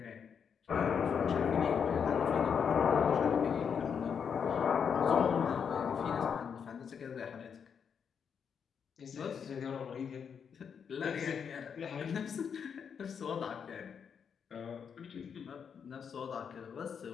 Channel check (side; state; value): right; quieter; 7.0 dB